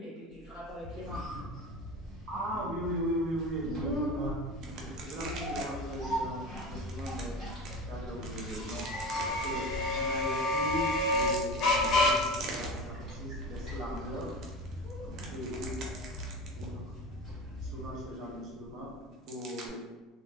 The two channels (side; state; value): both; normal; correlation 0.30